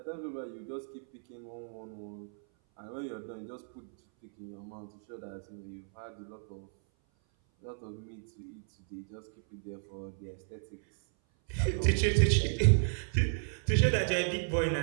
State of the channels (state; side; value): silent; left; 55 dB below the other